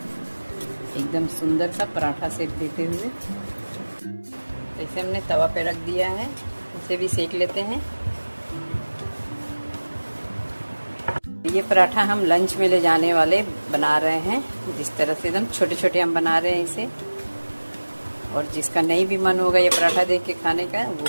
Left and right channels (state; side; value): inverted; both; correlation -1.00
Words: एकदम सुंदर सा पराठा सेक देते हुए, तो इसे हमने तवा पे रख दिया है, इसे भी सेक लेते हैं। ये पराठा हम लंच में ले जाने वाले बना रहे हैं। जिस तरह से एकदम छोटे छोटे हम बना रहे हैं इसे, और जिसका नहीं भी मन होगा ये पराठा देख के खाने का,